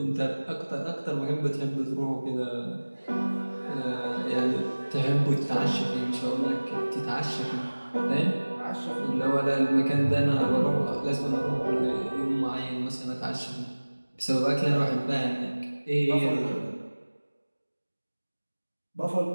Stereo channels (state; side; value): inverted; both; correlation -1.00